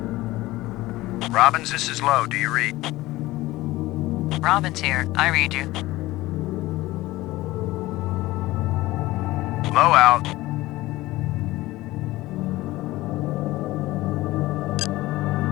Robbins, this is Low. Do you read? Robin's here. I read you. Low out.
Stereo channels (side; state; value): right; quieter; 18.2 dB